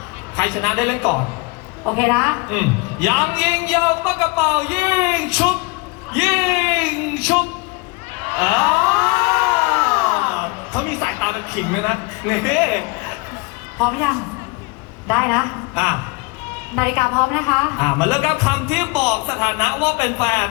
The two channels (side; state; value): right; quieter; 26.9 dB